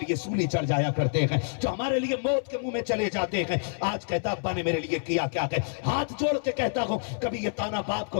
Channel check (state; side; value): silent; right; 60 dB below the other